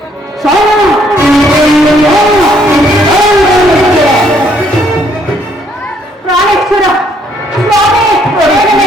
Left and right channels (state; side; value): normal; both; correlation 0.67